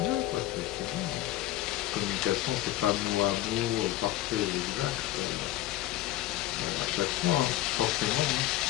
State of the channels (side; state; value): right; quieter; 14.9 dB